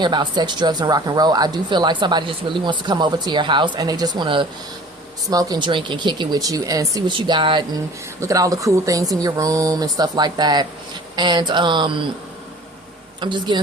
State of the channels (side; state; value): both; normal; correlation 0.46